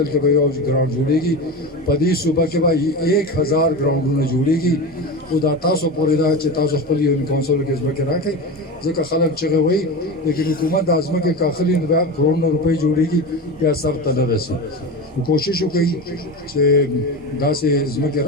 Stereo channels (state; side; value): normal; both; correlation 0.24